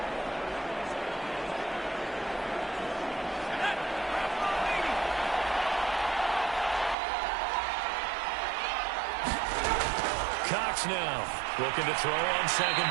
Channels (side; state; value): left; drops out; at 7.0 s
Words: Cox now looking to throw on 2nd